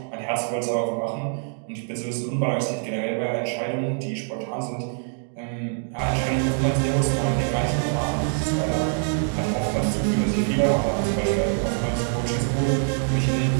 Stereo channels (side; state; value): left; silent; 58 dB below the other